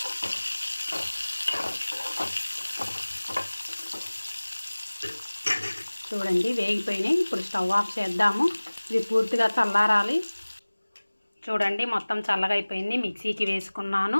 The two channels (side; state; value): both; inverted; correlation -1.00